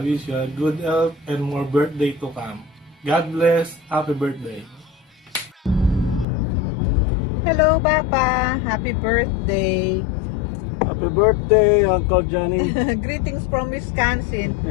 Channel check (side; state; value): right; drops out; at 6.2 s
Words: you a good health and more birthday to come. God bless. Happy birthday. Hello, Papa. Happy birthday. Happy birthday, Uncle Johnny. Greetings from Wisconsin.